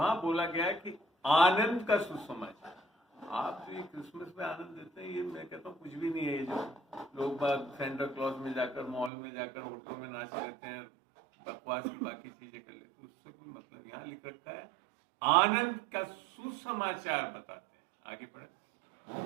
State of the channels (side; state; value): left; drops out; at 9.1 s